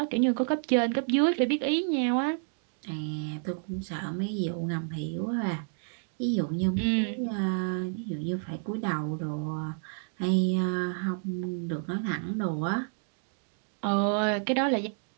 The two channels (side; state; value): left; silent; 58 dB below the other